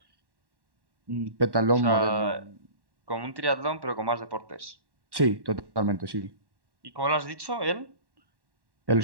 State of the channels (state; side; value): late; left; 1.1 ms